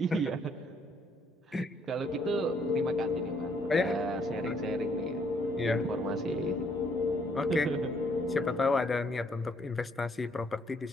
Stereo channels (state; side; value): normal; both; correlation 0.68